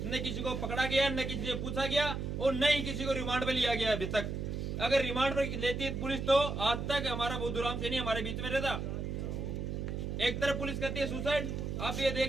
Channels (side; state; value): right; noise; hum, 3 dB below the sound